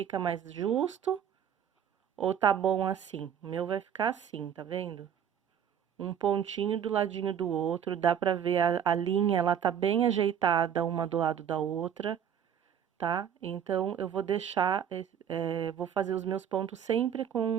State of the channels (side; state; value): left; quieter; 8.7 dB